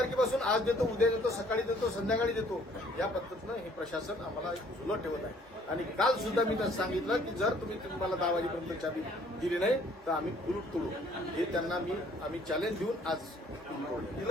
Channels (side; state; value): both; normal; correlation 0.60